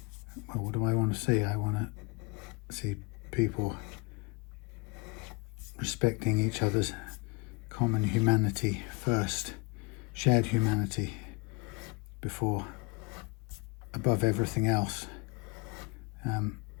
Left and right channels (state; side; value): quieter; right; 27.4 dB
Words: well, what do I want to see? I want to see people respecting each other's common humanity first, shared humanity above everything else.